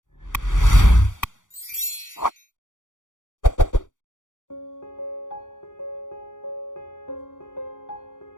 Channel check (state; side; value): late; right; 0.87 ms